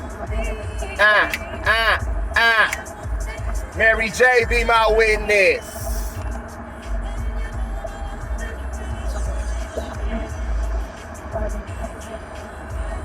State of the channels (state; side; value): identical; both; correlation 1.00